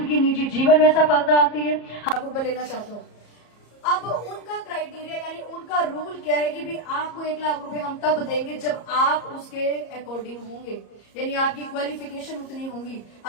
की निजी जीवन में असफलता आती है। आपको लेना चाहता हूँ। अब उनका क्राइटेरिया यानी उनका रूल क्या है कि भी आपको 1 लाख रुपए हम तब देंगे जब आप उसके अकॉर्डिंग होंगे, यानी आपकी क्वालिफिकेशन उतनी होंगी,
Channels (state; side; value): late; right; 34 ms